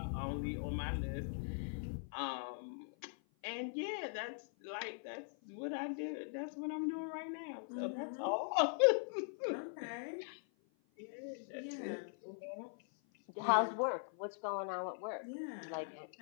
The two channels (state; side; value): silent; right; 50 dB below the other